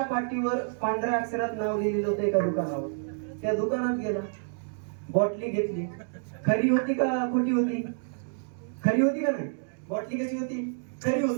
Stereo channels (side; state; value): left; silent; digital silence